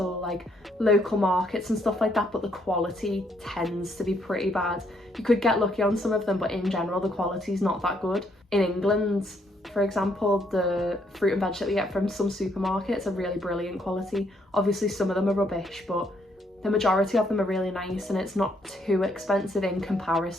like local markets and stuff like that, but the quality tends to be pretty bad. You could get lucky on some of them, but in general the quality is not that good. In England, for example, the fruit and veg that we get from some supermarkets are really brilliant quality. Obviously some of them are rubbish, but the majority of them are really nice, and it's not too expensive in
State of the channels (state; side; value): normal; both; correlation 0.71